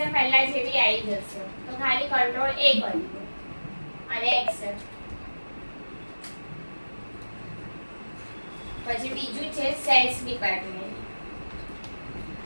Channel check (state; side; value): inverted; both; correlation -1.00